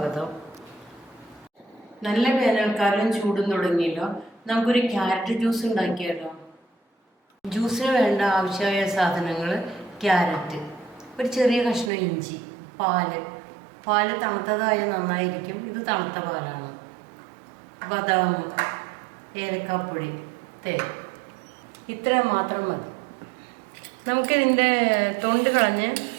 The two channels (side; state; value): left; drops out; at 11.9 s